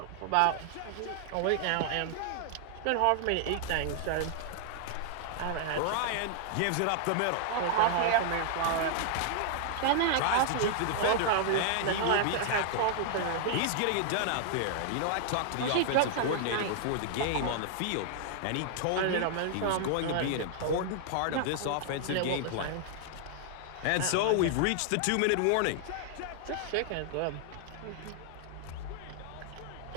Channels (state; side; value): different; both; correlation -0.01